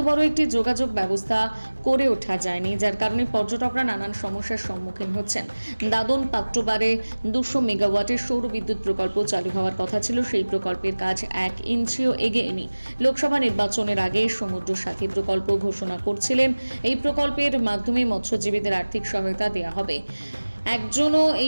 বড় একটি যোগাযোগ ব্যবস্থা করে ওঠা যায়নি, যার কারণে পর্যটকরা নানান সমস্যার সম্মুখীন হচ্ছেন। দাদন পাত্রবারে 200 মেগাওয়াটের সৌর বিদ্যুৎ প্রকল্প চালু হওয়ার কথা ছিল, সেই প্রকল্পের কাজ 1 ইঞ্চিও এগোয়নি। লোকসভা নির্বাচনের আগে সমুদ্র সাথী প্রকল্প ঘোষণা করছিলেন। এই প্রকল্পের মাধ্যমে মৎস্যজীবীদের আর্থিক সহায়তা দেওয়া হবে। একজনও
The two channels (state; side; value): inverted; both; correlation -1.00